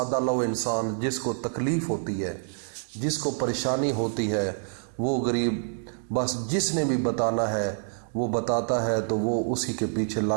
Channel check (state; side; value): silent; left; digital silence